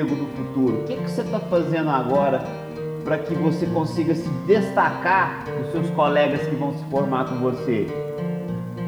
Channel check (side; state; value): both; identical; correlation 1.00